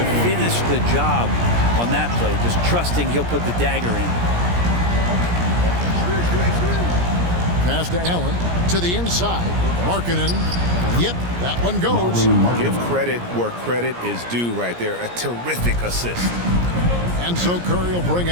finish the job on that play. Just trusting he'll put the dagger in. Pass to Allen. To the inside. Markkanen. Yep, that one goes. Give credit where credit is due right there. A terrific assist. And so Curry will bring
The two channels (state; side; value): late; left; 17 ms